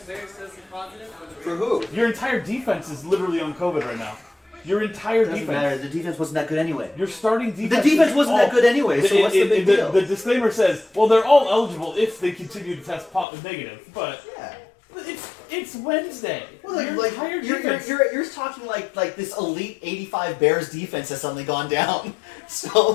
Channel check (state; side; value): drops out; right; at 13.2 s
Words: players tested positive? For who? Your entire defense is literally on COVID right now. Your entire Doesn't defense. matter. The defense wasn't that good anyway. Your starting defense. The defense is wasn't all- that good anyway. So what's the big deal? The disclaimer says, well, they're all eligible if they continue to test negative, but Yeah. it's Wednesday. Well, Your like entire you're defense. you're talking like this elite 85 Bears defense has suddenly gone down.